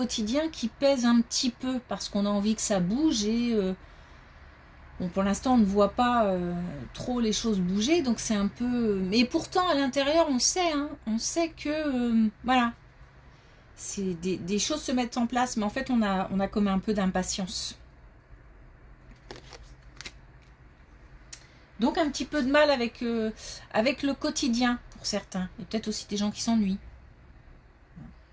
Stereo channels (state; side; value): identical; both; correlation 1.00